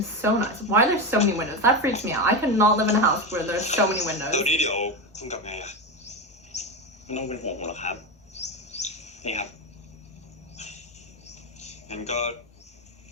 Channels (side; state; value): both; normal; correlation 0.16